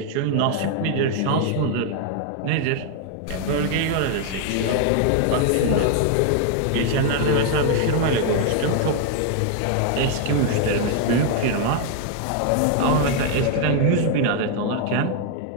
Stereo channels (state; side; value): different; both; correlation 0.00